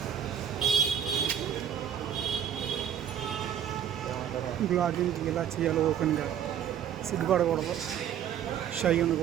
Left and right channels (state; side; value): quieter; left; 9.5 dB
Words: బ్లాగింగ్ ఇలా చేయాలి, ఓపెన్గా, సిగ్గుపడకూడదు, షై